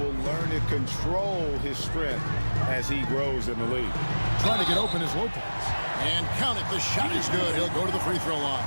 learn to control his strength as he grows in the league. Trying to get open is Lopez. And count it, the shot is good. He'll go to the free throw line.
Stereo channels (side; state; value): both; inverted; correlation -1.00